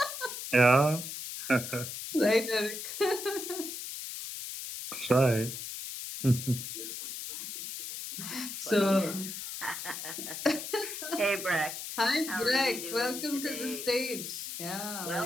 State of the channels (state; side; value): noise; left; hiss, 7 dB below the sound